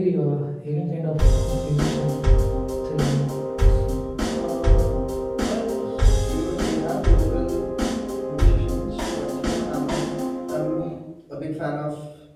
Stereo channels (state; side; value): identical; both; correlation 1.00